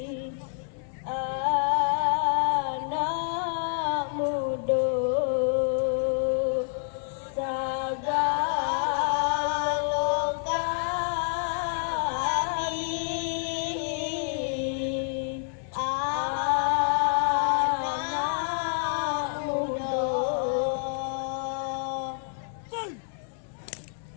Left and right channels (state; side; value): silent; right; digital silence